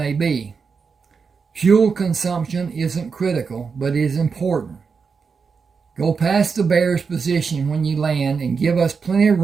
be. Fuel consumption isn't critical, but is important. Go past the bear's position when you land and give us plenty of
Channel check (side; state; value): left; quieter; 5.4 dB